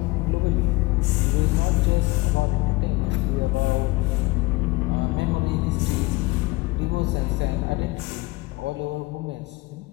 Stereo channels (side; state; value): right; quieter; 22.3 dB